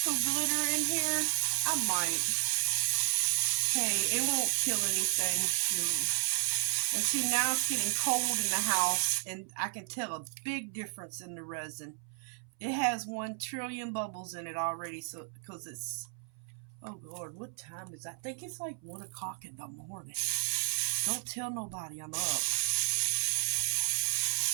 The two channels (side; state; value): left; silent; 56 dB below the other